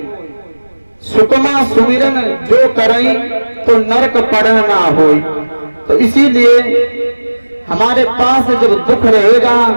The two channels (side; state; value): both; inverted; correlation -1.00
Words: सुखमा सुमिरन जो करें तो नरक पड़न ना होई। तो इसीलिए हमारे पास जब दुख रहेगा